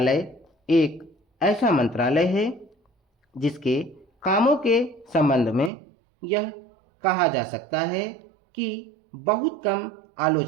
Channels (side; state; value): left; drops out; at 5.7 s